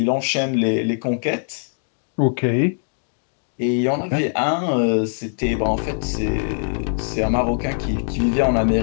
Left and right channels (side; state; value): right; silent; 61 dB below the other